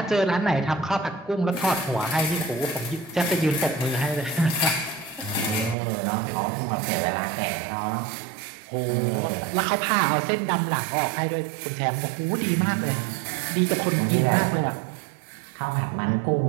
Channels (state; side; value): drops out; left; at 5.8 s